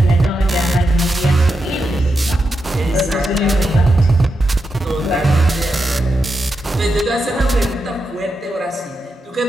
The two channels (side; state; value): both; normal; correlation 0.86